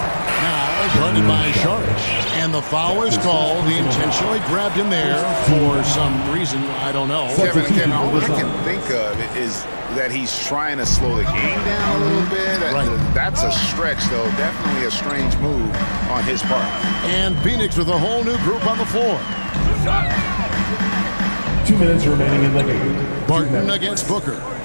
guarded by Sharch. And the foul is called. He intentionally grabbed him there for some reason. I don't know. Kevin, all I can think of is that he's trying to slow the game down a little bit. Right. That's a stretch, though. Definitely a strange move on his part. And Phoenix with a whole new group on the floor. 2 minutes remaining in the game. Barton against Booker.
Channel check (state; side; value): inverted; both; correlation -1.00